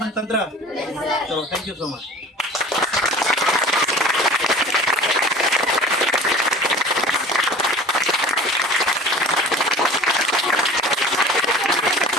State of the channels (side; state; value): both; normal; correlation 0.42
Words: तंत्र? चलो, थैंक यू सो मच।